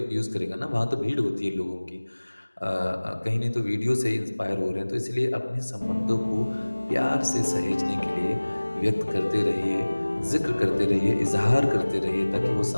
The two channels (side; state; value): both; inverted; correlation -1.00